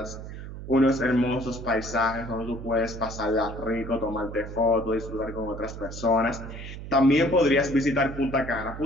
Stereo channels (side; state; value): right; noise; hum, 10 dB below the sound